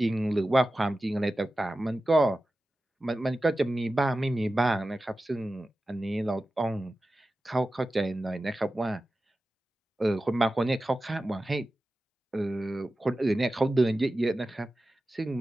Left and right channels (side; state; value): both; normal; correlation 0.94